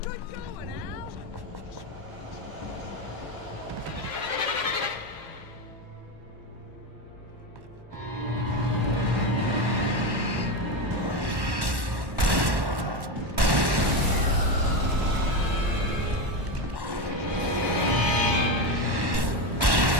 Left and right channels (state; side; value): late; left; 1.1 ms